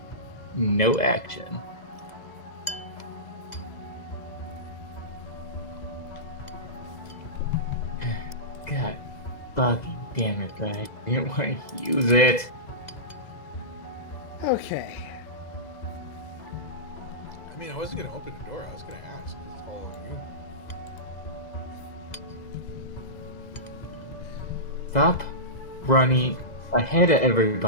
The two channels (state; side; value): late; right; 2.0 ms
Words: no action. God fucking damn it, I didn't want to use it. Okay. I mean, I wasn't gonna open the door. I was gonna ask. It's all on you. Stop running ahead of